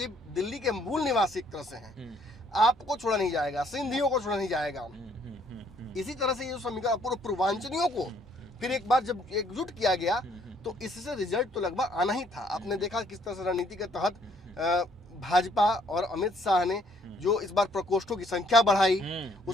दिल्ली के मूल निवासी एक तरह से हैं, आपको छोड़ा नहीं जाएगा, सिंधियों को छोड़ा नहीं जाएगा। इसी तरह से ये समीकरण पूर्व पूर्वांचलियों को फिर एक बार जब एकजुट किया गया, तो इससे रिजल्ट तो लगभग आना ही था। आपने देखा किस तरह से रणनीति के तहत भाजपा और अमित शाह ने जो इस बार प्रकोष्ठों की संख्या बढ़ाई,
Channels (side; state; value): both; normal; correlation 0.65